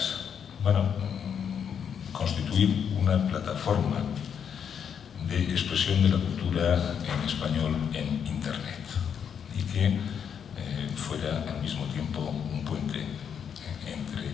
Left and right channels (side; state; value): right; quieter; 7.7 dB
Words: Bueno, constituir una plataforma de expresión de la cultura en español en Internet y que fuera al mismo tiempo un puente entre